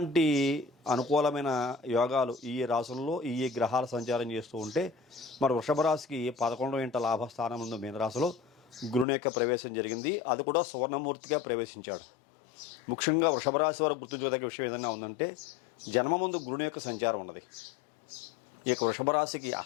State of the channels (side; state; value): right; drops out; at 9.1 s